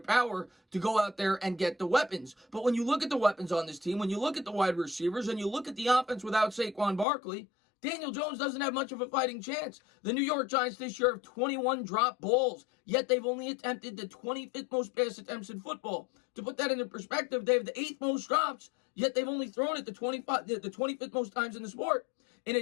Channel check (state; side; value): drops out; right; at 7.1 s